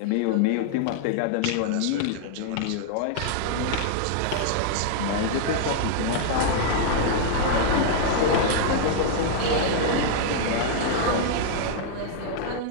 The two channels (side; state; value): both; different; correlation -0.01